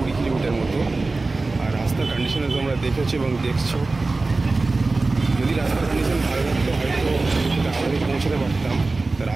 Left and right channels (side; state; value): left; quieter; 3.5 dB